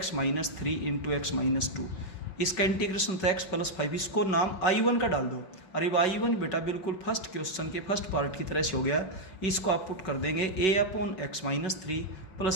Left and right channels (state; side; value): late; right; 5.3 ms